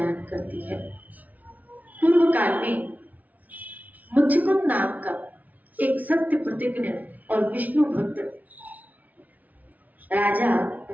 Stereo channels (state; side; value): late; left; 0.075 ms